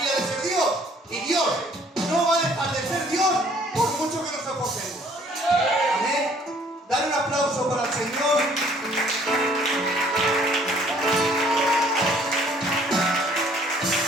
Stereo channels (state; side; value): normal; both; correlation 0.59